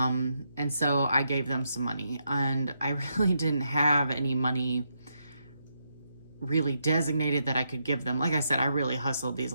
so I gave them some money, and I really didn't have any money really designated that I could give them. Like I said, I really hustled these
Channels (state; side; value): inverted; both; correlation -0.81